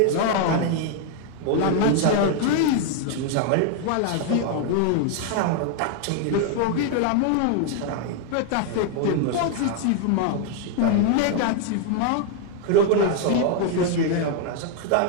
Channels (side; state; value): both; different; correlation 0.00